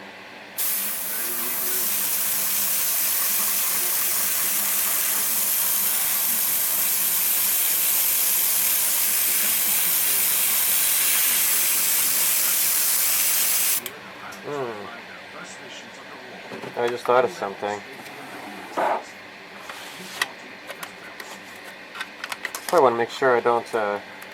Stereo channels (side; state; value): both; identical; correlation 1.00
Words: I just thought of something. I want to make sure I don't